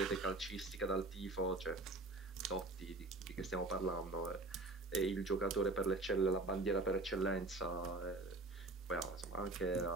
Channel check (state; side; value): quieter; left; 3.0 dB